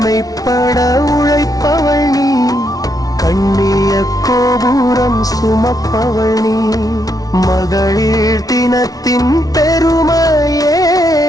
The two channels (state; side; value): late; right; 0.18 ms